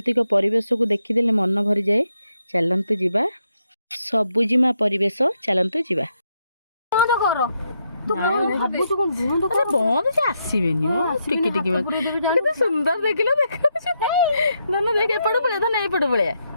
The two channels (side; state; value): both; inverted; correlation -0.80